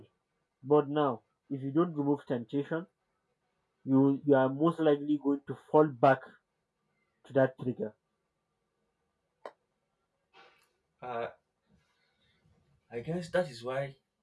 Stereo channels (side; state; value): both; identical; correlation 1.00